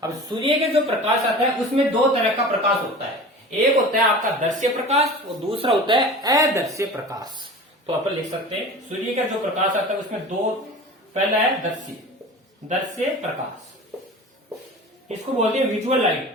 अब सूर्य के जो प्रकाश आता है उसमें दो तरह का प्रकाश होता है, एक होता है आपका दर्श्य प्रकाश और दूसरा होता है अदर्श्य प्रकाश। तो अपन लिख सकते हैं, सूर्य का जो प्रकाश आता है उसमें दो, पहला है दर्श्य प्रकाश, इसको बोलते हैं विजुअल लाइट,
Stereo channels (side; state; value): both; normal; correlation 0.36